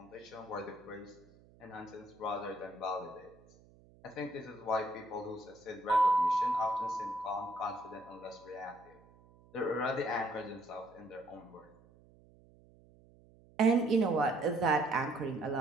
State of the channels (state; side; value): noise; right; hum, 26 dB below the sound